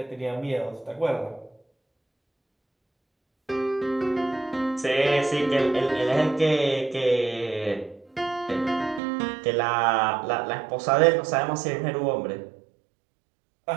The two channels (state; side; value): drops out; left; at 9.0 s